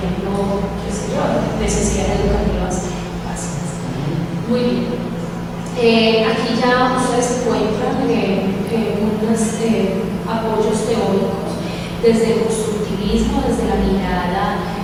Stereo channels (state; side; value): identical; both; correlation 1.00